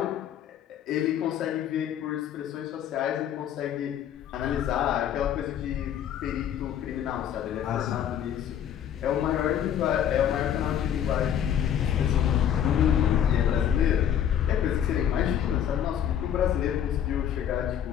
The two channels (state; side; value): quieter; right; 9.7 dB